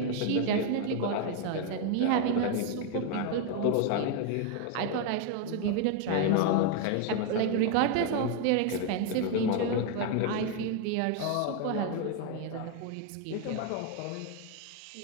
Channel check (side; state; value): both; different; correlation 0.01